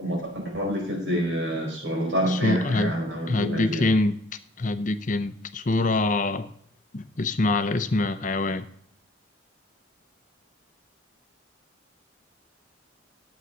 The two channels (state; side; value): normal; both; correlation 0.55